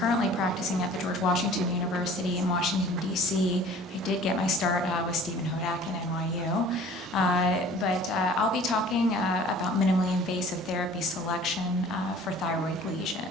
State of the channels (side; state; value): both; normal; correlation 0.48